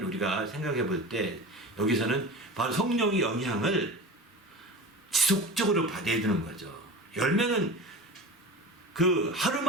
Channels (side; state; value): both; normal; correlation 0.33